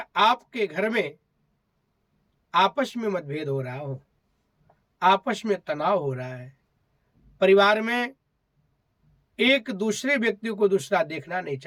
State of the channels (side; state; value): both; identical; correlation 1.00